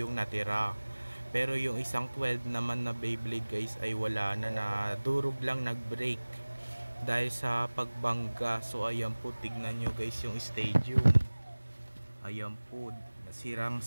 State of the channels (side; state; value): both; inverted; correlation -1.00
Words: natira. Pero yung isang 12 naman na Beyblade guys ay wala na, durog lang nag-break dahil sa pagbangga. So ayan po, tignan nyo guys yung stadium. Ayan po, sirang